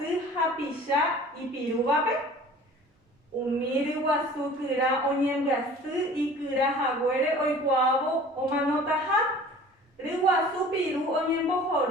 hapisha y pirubape. Umir guasukura onyembuasu y kura haguere oikuavo o manotaha. Riguasu piru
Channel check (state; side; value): normal; both; correlation 0.45